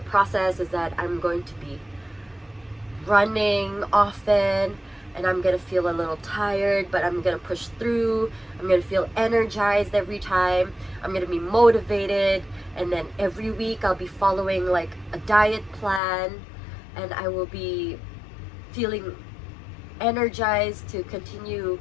process is that I'm going to be running often, and I'm gonna feel a little tired, but I'm gonna push through. I'm gonna feel energized every time. I'm gonna be motivated, and then every week I'll be following like a diet plan, and I will be feeling energized to continue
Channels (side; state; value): right; drops out; at 16.0 s